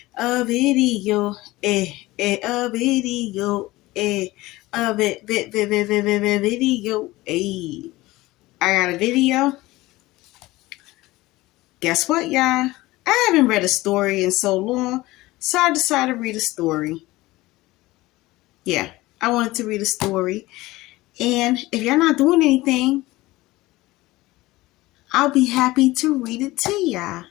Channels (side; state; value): right; quieter; 19.1 dB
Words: video, a video, video, I got a video. Guess what, y'all? I haven't read a story in so long, so I decided to read a story. Yeah, I wanted to read a story. And if you're not doing anything, I'll be happy to read it to y'all.